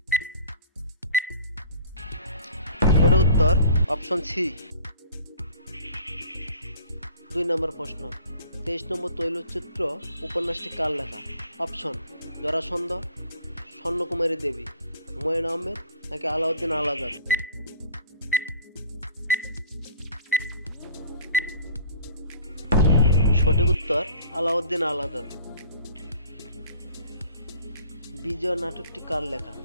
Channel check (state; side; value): inverted; both; correlation -0.46